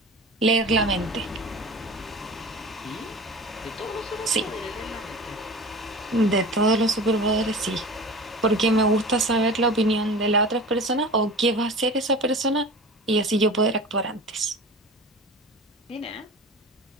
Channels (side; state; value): both; normal; correlation 0.35